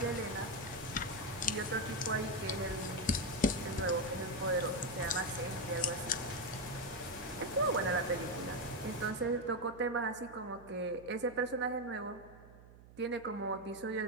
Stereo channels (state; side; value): noise; right; hum, 20 dB below the sound